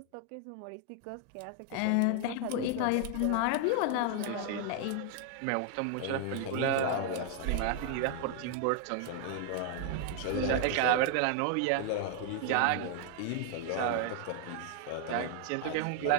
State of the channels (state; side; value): different; both; correlation 0.00